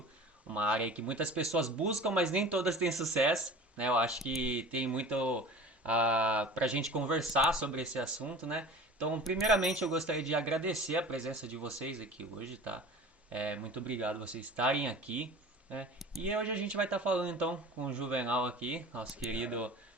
Uma área que muitas pessoas buscam, mas nem todas têm sucesso, né? Eu acho que tem muito para a gente conversar sobre esse assunto, né? Então, primeiramente, eu gostaria de agradecer a presença de vocês aqui hoje, tá? Muito obrigado vocês estarem aqui, né? E hoje a gente vai estar falando, então, com o Juvenal aqui, nosso querido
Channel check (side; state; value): both; normal; correlation 0.39